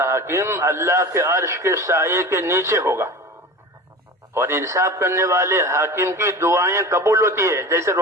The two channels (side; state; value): both; normal; correlation 0.34